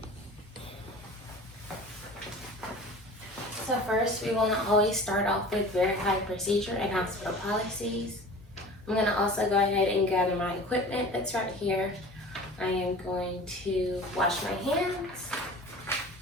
So first, we want to always start off with verify procedure and hospital policies. I'm going to also go ahead and gather my equipment that's right here. I am going to wash my hands.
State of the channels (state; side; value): normal; both; correlation 0.41